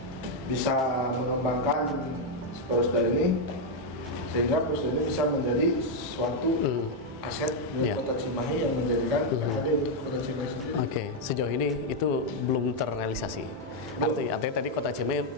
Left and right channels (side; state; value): both; normal; correlation 0.01